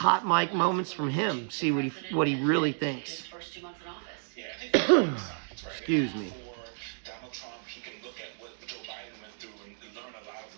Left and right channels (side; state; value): left; silent; digital silence